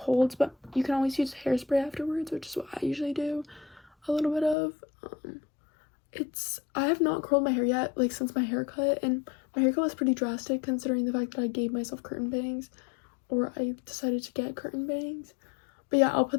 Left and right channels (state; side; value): drops out; right; at 4.5 s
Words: but you can always use hairspray afterwards, which is what I usually do a little bit of. I have not curled my hair yet, like, since my haircut, and my haircut was pretty drastic considering the fact that I gave myself curtain bangs, or I decided to get curtain bangs. But yeah, I'll put